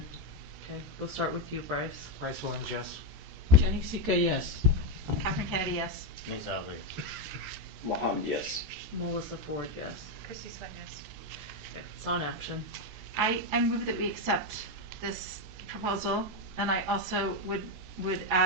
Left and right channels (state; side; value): late; left; 14 ms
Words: Okay. We'll start with you, Bryce. Bryce Williams, yes. Jenny Sika, yes. Catherine Kennedy, yes. Nate Salzler. Mohammed, yes. Melissa Ford, yes. Christy Sweat, yes. Okay. It's on action. I move that we accept this proposal, and I also would